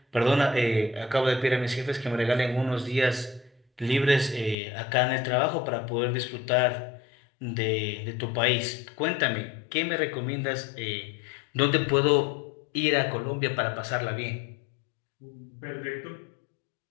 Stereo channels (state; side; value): drops out; right; at 4.5 s